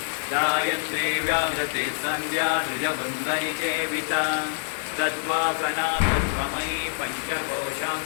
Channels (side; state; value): right; silent; digital silence